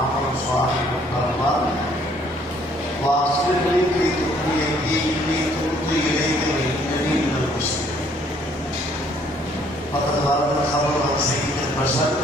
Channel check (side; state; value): both; normal; correlation 0.63